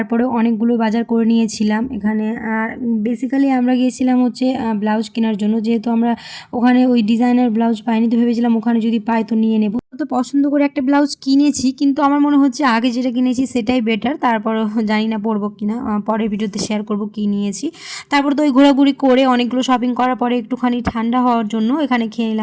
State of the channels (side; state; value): both; identical; correlation 1.00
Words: অনেকগুলো বাজার করে নিয়েছিলাম এখানে। আর বেসিক্যালি আমরা গিয়েছিলাম হচ্ছে ব্লাউজ কেনার জন্য, যেহেতু আমরা ওখানে ওই ডিজাইনার ব্লাউজ পাইনি, তো ভেবেছিলাম ওখানে যদি পাই তো নিয়ে নেব। তো পছন্দ করে একটা ব্লাউজ কিনেছি, কিন্তু আমার মনে হচ্ছে আগে যেটা কিনেছি সেটাই বেটার। তারপরও জানি না পরবো কিনা, পরের ভিডিওতে শেয়ার করব কী নিয়েছি। তারপর তো ওই ঘোরাঘুরি করে অনেকগুলো শপিং করার পরে একটুখানি ঠান্ডা হওয়ার জন্য এখানে খেয়ে